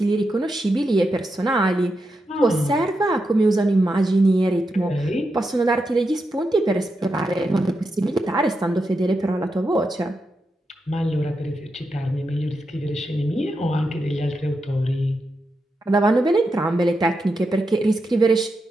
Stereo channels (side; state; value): both; normal; correlation 0.86